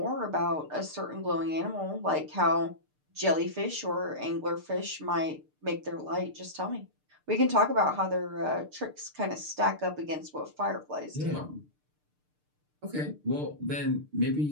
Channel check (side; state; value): left; late; 6.7 ms